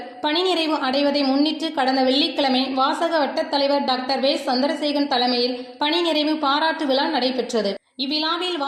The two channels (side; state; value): both; identical; correlation 1.00